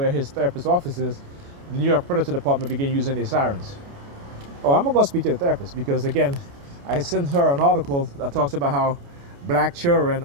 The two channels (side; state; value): left; late; 29 ms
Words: his therapist's office is, the New York Furniture Department began using their sirens. Oh, I'm gonna go speak to the therapist because again, I sent her an article that talks about how black children,